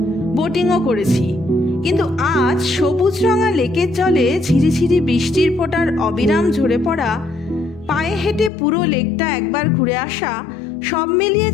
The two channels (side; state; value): right; drops out; at 8.5 s